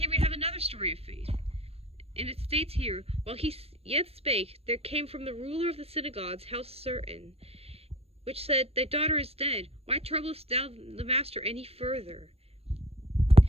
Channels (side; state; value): left; late; 0.29 ms